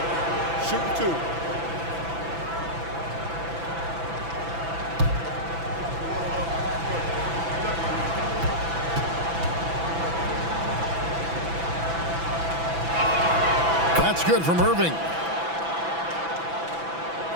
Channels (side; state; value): left; late; 6.0 ms